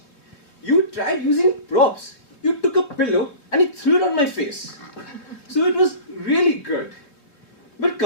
You tried using props. You took a pillow and you threw it on my face. So it was really good. But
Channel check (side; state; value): right; late; 3.4 ms